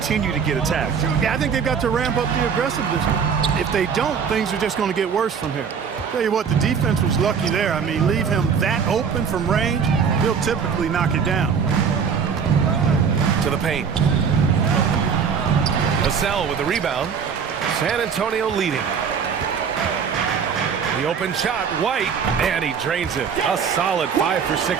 to get attacked. Yeah, I think they've got to ramp up the aggressiveness. If they don't, things are just going to get worse from here. Tell you what, the defense was lucky there. I mean, leave him that open from range, he'll typically knock it down. To the paint. Vassell with the rebound. San Antonio leading. The open shot, White, and he drains it. A solid 5 for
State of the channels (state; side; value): quieter; left; 6.6 dB